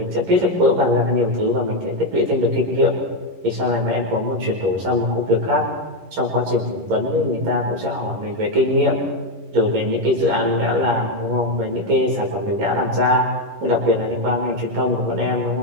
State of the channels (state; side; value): late; left; 11 ms